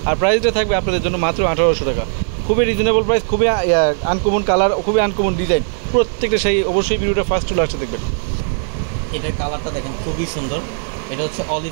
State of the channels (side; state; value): left; silent; digital silence